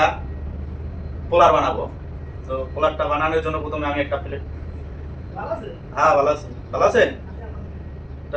পোলার বানাবো। তো পোলারটা বানানোর জন্য প্রথমে আমি একটা প্লেট, হ্যাঁ ভালো আছি, ভালো আছেন?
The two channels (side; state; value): both; identical; correlation 1.00